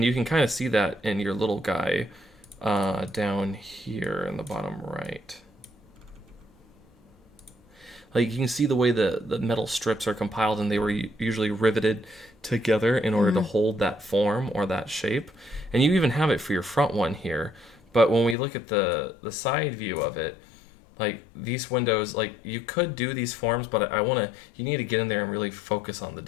you can kind of see that in your little guy down here in the bottom right. Like you can see the way the metal strips are compiled, and they were usually riveted together in order to hold that form or that shape, and you even have it for your front one here. But when we look at the side view of it, like these windows, like you could do these forms, but you need to get in there and really focus on the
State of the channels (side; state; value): right; drops out; at 18.4 s